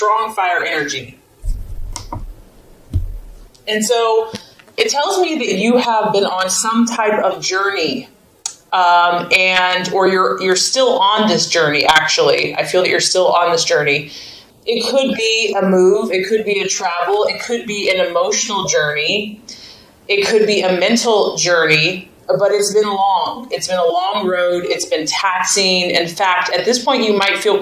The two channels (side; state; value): both; identical; correlation 1.00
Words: fire energy. And so it tells me that you have been on some type of journey, or you're still on this journey, actually. I feel that you're still on this journey. It could be a move, it could be a travel, it could be an emotional journey, it could be a mental journey, but it's been long. It's been a long road, it's been taxing. In fact, at this point you might feel